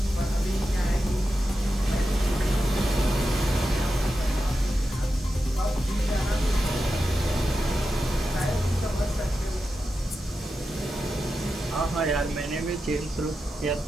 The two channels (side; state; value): both; normal; correlation 0.90